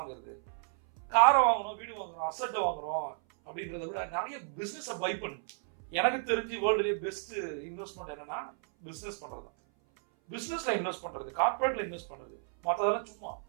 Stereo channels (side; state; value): left; silent; 56 dB below the other